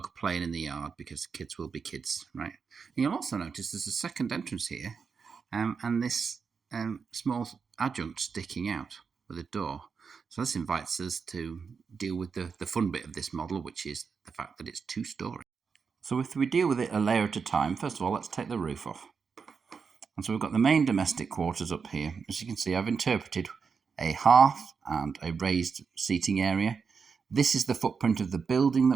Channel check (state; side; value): quieter; left; 5.6 dB